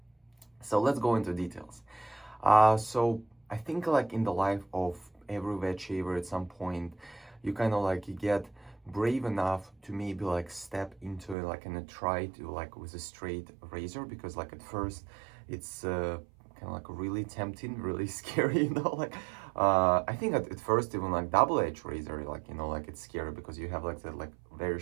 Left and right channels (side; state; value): left; drops out; at 11.4 s